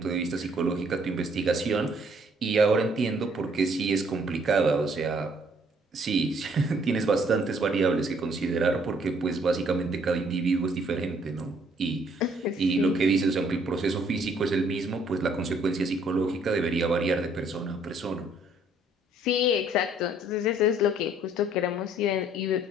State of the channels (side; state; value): both; normal; correlation 0.63